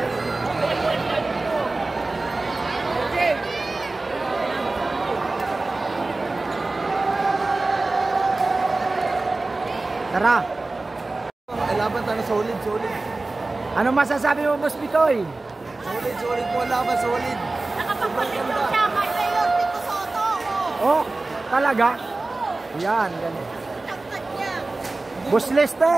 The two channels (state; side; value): quieter; left; 3.2 dB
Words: Tara. Laban tayo solid. Ano masasabi mo, Boss Bitoy? Solid po laban, solid. Nakapagpapicture siya kay Mayor Tito Soto. Oh, talaga? Yan, ganun. Tagtag niya. Boss